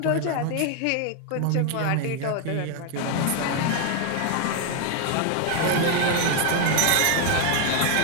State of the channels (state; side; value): different; both; correlation 0.00